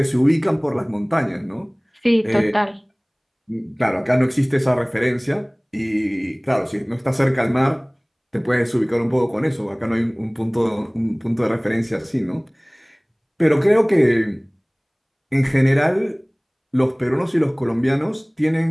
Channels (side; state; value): both; identical; correlation 1.00